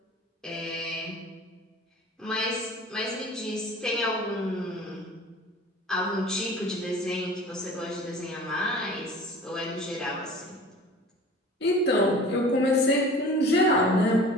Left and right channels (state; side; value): normal; both; correlation 0.42